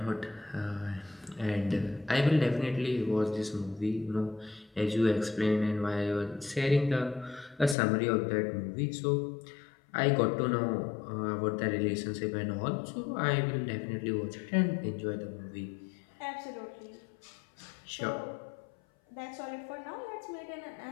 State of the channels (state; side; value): drops out; right; at 7.8 s